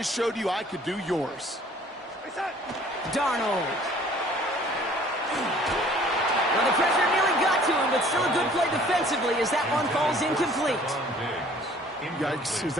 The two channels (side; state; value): both; normal; correlation 0.54